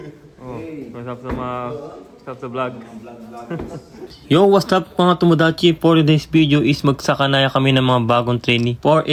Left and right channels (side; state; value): both; identical; correlation 1.00